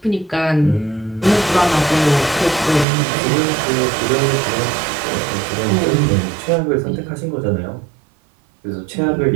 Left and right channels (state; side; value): drops out; left; at 2.9 s